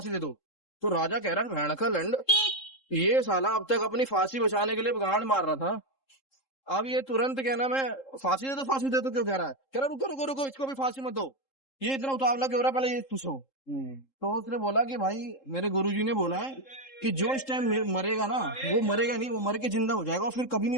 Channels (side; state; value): right; late; 3.7 ms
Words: दे दो। तो राजा कह रहा है भैंका लंड, ये साला अब तक अपनी फांसी बचाने के लिए गांड मार रहा था, अब ये तुरंत कहना मैं फांसी दे दो क्यों कह रहा है। कह रहा रुको, इसको भी फांसी मत दो, ये इतना उतावला क्यों हो रहा, पहले ये पूछो। तो उसने बोला कि भाई मेरे गुरुजी ने बोला है कि जो इस टाइम मरेगा ना, वो मरेगा नहीं, वो मर के जिंदा हो जाएगा और फिर कभी